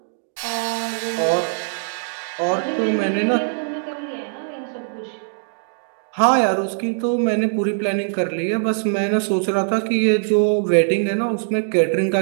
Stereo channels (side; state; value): left; silent; digital silence